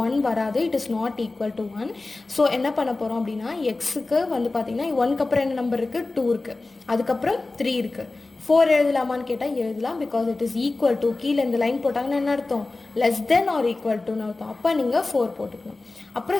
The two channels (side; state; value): right; quieter; 3.3 dB